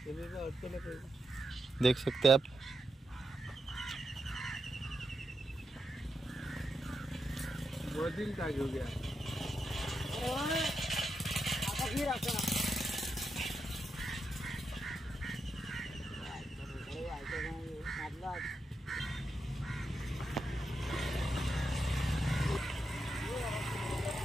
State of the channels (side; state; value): both; normal; correlation 0.86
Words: अटकेला पाहिजे. देख सकते हैं आप. मधील का घेऊ घ्या.